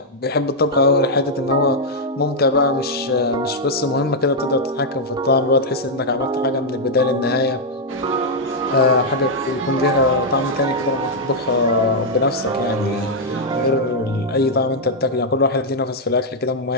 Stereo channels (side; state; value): both; normal; correlation -0.03